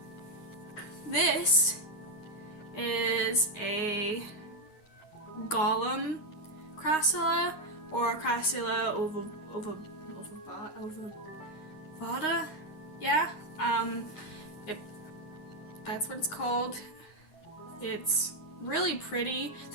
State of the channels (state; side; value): late; right; 9.6 ms